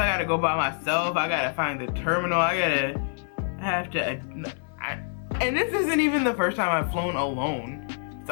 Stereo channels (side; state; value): right; silent; 61 dB below the other